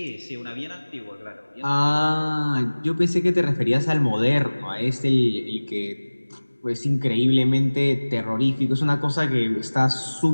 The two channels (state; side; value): inverted; both; correlation -1.00